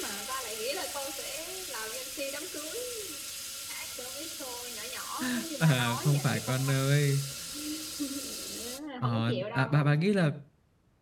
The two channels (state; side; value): identical; both; correlation 1.00